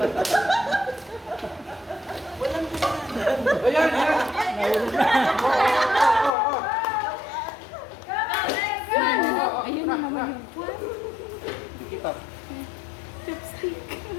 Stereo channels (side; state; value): right; drops out; at 6.3 s